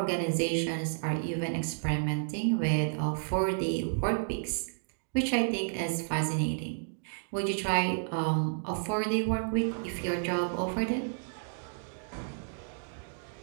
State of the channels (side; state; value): left; silent; digital silence